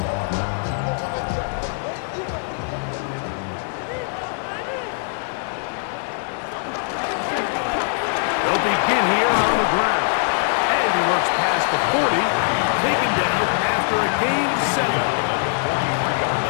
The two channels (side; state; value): right; silent; 64 dB below the other